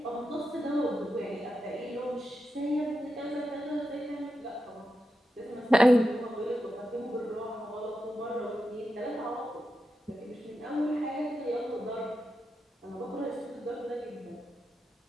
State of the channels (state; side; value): normal; both; correlation 0.88